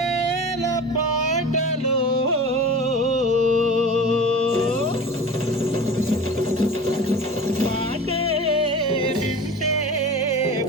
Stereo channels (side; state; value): both; normal; correlation 0.35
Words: పాటలు పాటే వింటే